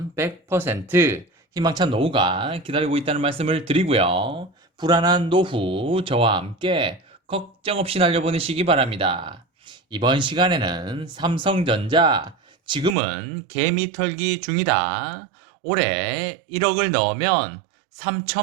100% 희망찬 노후가 기다리고 있다는 말씀을 드리고요. 불안한 노후 저와 함께 걱정 없이 날려보내시기 바랍니다. 이번 시간에는 삼성전자 지금은 개미 털기 중이다. 올해 1억을 넣으면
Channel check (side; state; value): left; drops out; at 13.0 s